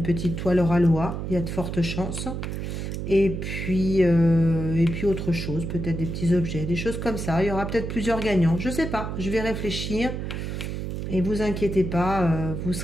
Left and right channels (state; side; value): noise; right; hum, 4 dB below the sound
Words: petite toile Ralois, il y a de fortes chances. Et puis autre chose, peut-être des petits objets, des choses comme ça. Il y aura peut-être plusieurs gagnants, je ne sais pas, je vais réfléchir. Et vous inquiétez pas, vous